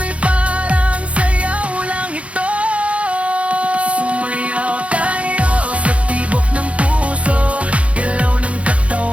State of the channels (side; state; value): left; late; 0.063 ms